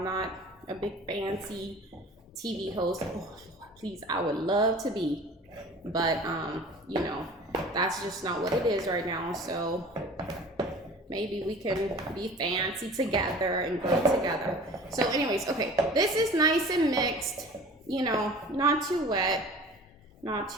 not a big fancy TV host. Oh, Lord, please, I would love to be, but you know, that's just not what it is right now. So maybe we can be fancy together and grow together. So anyways, okay, this is nice and mixed, you know, not too wet, not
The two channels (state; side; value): normal; both; correlation 0.43